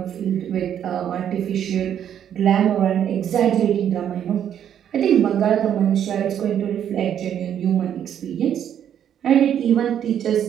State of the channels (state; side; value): quieter; left; 9.6 dB